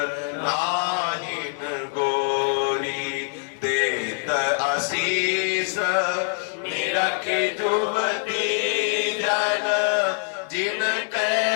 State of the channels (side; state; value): right; silent; 58 dB below the other